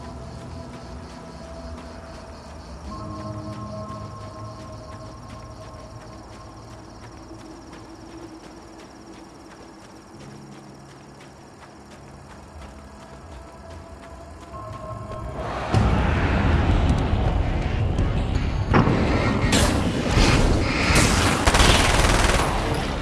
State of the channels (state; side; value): identical; both; correlation 1.00